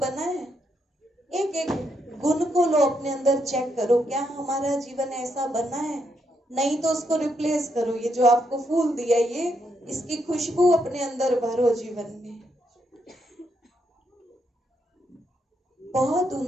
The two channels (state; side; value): normal; both; correlation 0.78